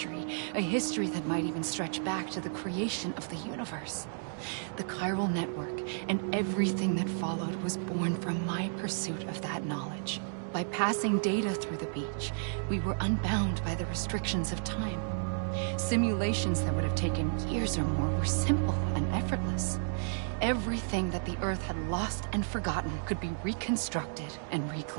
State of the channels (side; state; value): left; silent; digital silence